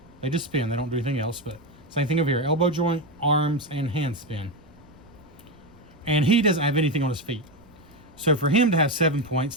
They just spin. They don't do anything else, but same thing over here. Elbow joint, arms, and hands spin. And he doesn't have anything on his feet. So for him to have 7 points,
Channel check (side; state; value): right; noise; rumble, 26 dB below the sound